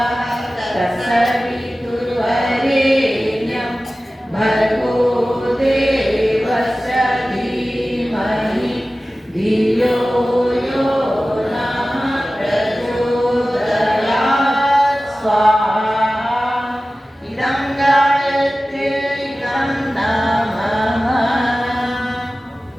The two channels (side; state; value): both; normal; correlation 0.96